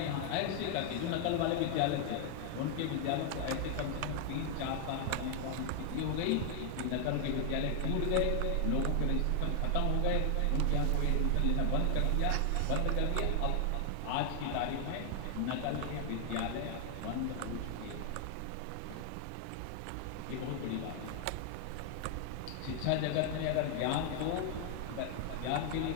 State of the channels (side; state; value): both; different; correlation 0.00